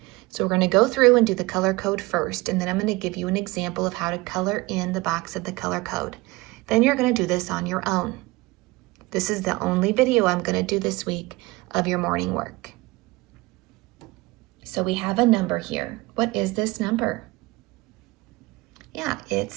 So we're going to go through and do the color code first, and then I'm going to give you an example of how to color in the box of the color code. Then you're going to do this on your own. This is the only video I'm going to do this week of your morning work. So we have a number here. What is this number? Yeah,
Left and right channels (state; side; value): quieter; left; 22.2 dB